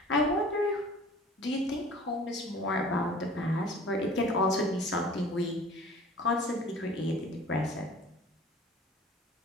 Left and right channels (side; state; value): both; normal; correlation 0.46